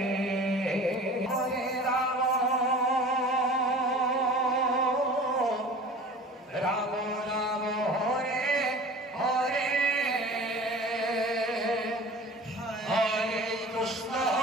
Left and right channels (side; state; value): both; normal; correlation 0.41